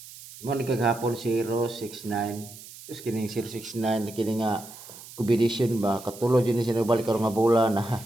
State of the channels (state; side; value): noise; right; hiss, 17 dB below the sound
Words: Mo ni kagahapon 069. Tapos kining 069 kini nga combination ba katulod yun siya nagbalik karon nga bola na